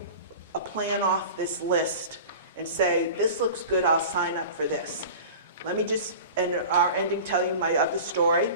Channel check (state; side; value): inverted; both; correlation -0.36